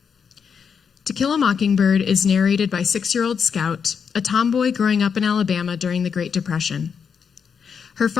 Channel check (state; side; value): quieter; right; 6.6 dB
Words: To Kill a Mockingbird is narrated by 6-year-old Scout, a tomboy growing up in Alabama during the Great Depression. Her